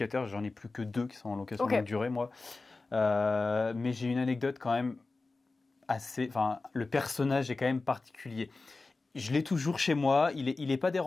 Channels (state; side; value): quieter; right; 3.6 dB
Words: j'en ai plus que 2 qui sont en location longue durée, moi. Mais j'ai une anecdote quand même assez... Enfin, le personnage est quand même particulier. Je l'ai toujours chez moi, il est pas